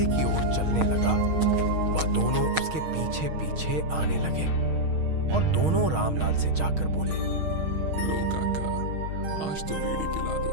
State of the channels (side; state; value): left; late; 6.4 ms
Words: की ओर चलने लगा, वह दोनों उसके पीछे पीछे आने लगे और दोनों रामलाल से जाकर बोले, लो काका, आज तो बीड़ी पिला दो।